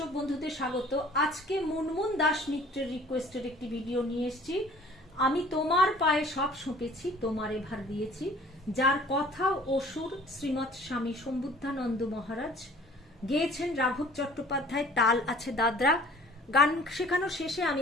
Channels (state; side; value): normal; both; correlation 0.51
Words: বন্ধুদের স্বাগত। আজকে মুনমুন দাস মিত্রের রিকোয়েস্টের একটি ভিডিও নিয়ে এসেছি। আমি তোমার পায়ে সব সঁপেছি, তোমার এভার দিয়েছি, যার কথা ও সুর শ্রীমৎ স্বামী সম্বুদ্ধানন্দ মহারাজ, গেয়েছেন রাঘব চট্টোপাধ্যায়, তাল আছে দাদরা। গান শেখানোর শেষে